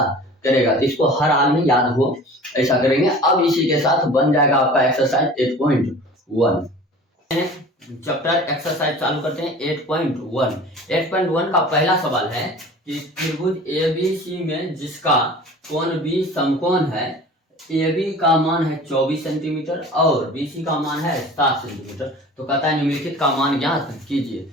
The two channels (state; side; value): normal; both; correlation 0.42